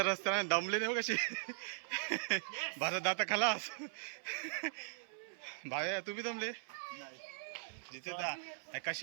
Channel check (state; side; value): silent; left; 51 dB below the other